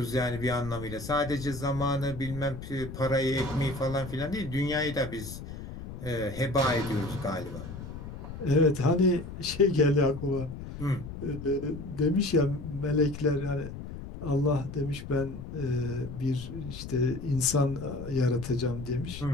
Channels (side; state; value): left; noise; rumble, 10 dB below the sound